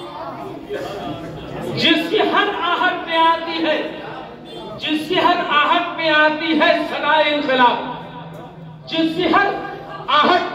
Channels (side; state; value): both; identical; correlation 1.00